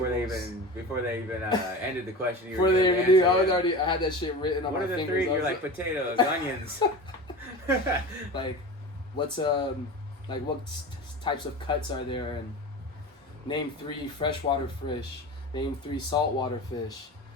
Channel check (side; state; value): both; normal; correlation 0.31